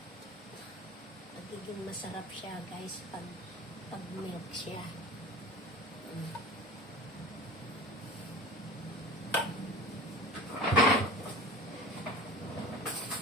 magiging masarap siya guys pag milk siya.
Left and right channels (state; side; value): normal; both; correlation 0.37